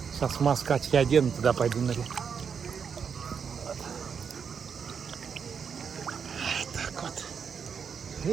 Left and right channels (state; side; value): quieter; left; 6.6 dB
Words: Сейчас маску очки одену, туда пойду на реку. Вот. Так вот.